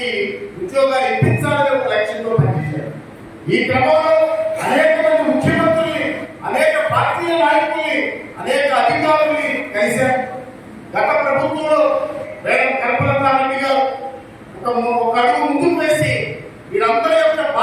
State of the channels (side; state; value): both; identical; correlation 1.00